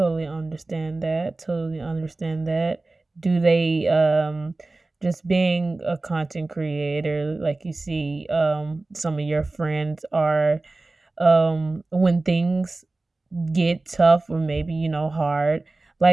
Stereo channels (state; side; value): quieter; left; 3.2 dB